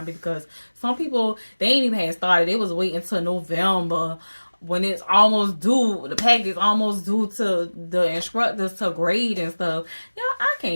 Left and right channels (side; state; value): both; inverted; correlation -1.00